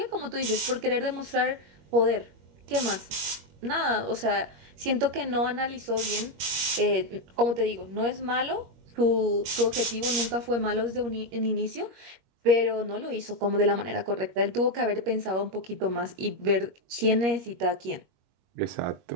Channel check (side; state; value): left; late; 21 ms